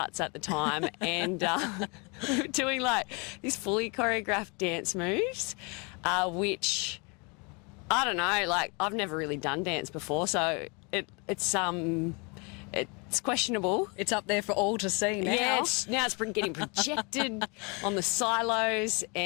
at the time, and we were doing, these fully choreographed dance moves, which, I don't know, I've never really done dance before, so it's questionable. It's up there for all to see now. Yeah, now it's getting projected on the silos,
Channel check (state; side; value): quieter; right; 31.3 dB